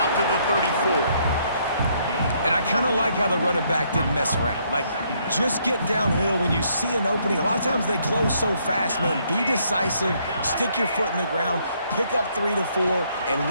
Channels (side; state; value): both; inverted; correlation -0.70